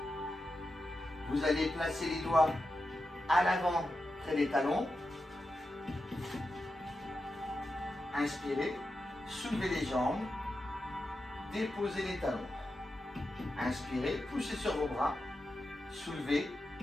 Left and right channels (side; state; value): both; normal; correlation 0.89